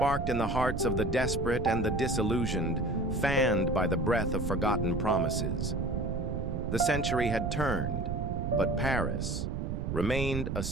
in the hearts of the desperate and the disillusioned, fanned by the breath of forgotten promises. The century had turned, but Paris remained a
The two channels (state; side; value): noise; right; rumble, 2 dB below the sound